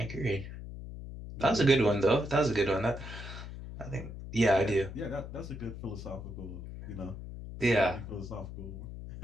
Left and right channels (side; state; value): left; noise; hum, 10 dB below the sound